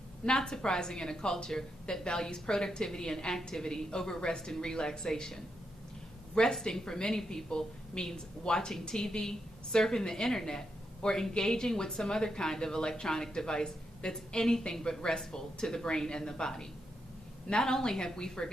not surprising in a culture that values productivity and activity over rest and relaxation. Resting for many people means watching TV, surfing the internet, or engaging with some other kind of electronic device that's anything but restful to the brain and the body. Not only have we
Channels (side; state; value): both; normal; correlation 0.83